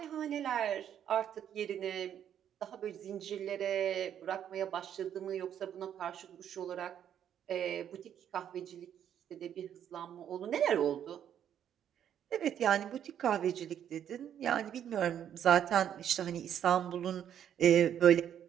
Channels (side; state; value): left; quieter; 9.7 dB